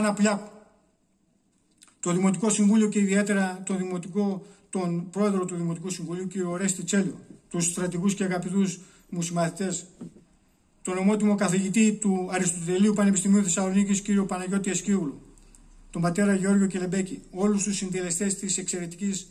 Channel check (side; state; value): both; identical; correlation 1.00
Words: Πλιάκου, το Δημοτικό Συμβούλιο και ιδιαίτερα τον πρόεδρο του Δημοτικού Συμβουλίου κύριο Ορέστη Τσέλιο, τους στρατηγούς και αγαπητούς μου συμμαθητές, τον ομότιμο καθηγητή του Αριστοτελείου Πανεπιστημίου Θεσσαλονίκης κύριο Παναγιώτη Εσκίουλου, τον πατέρα Γεώργιο Κελεμπέκη, όλους τους συντελεστές της εξαιρετικής